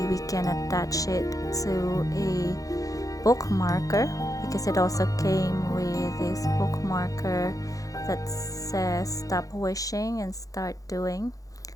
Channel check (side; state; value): right; late; 0.17 ms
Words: we can attach it to a bookmarker, because it also came with this bookmarker that says stop wishing and start doing.